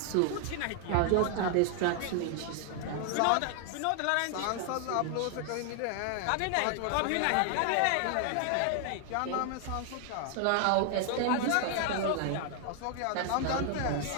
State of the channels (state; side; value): different; both; correlation 0.00